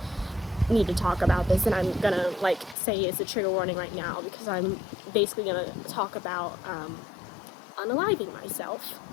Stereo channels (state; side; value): drops out; right; at 2.8 s